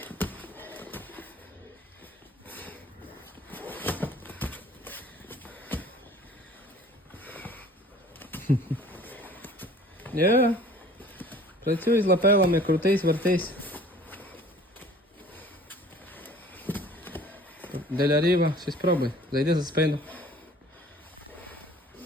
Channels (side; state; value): both; normal; correlation 0.49